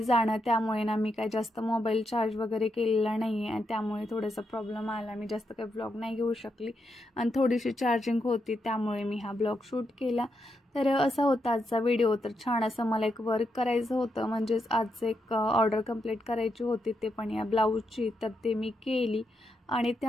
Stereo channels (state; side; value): normal; both; correlation 0.82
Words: जाणं, त्यामुळे ना मी काय जास्त मोबाईल चार्ज वगैरे केलेला नाही आहे, आणि त्यामुळे थोडासा प्रॉब्लेम आला। मी जास्त काही ब्लॉग नाही घेऊ शकली, आणि थोडीशी चार्जिंग होती, त्यामुळे मी हा ब्लॉग शूट केला। तर असा होता आजचा व्हिडिओ। तर छान असं मला एक वर्क करायचं होतं, म्हणजेच आज एक ऑर्डर कंप्लीट करायची होती, ते पण या ब्लाऊजची। तर ते मी केली, आणि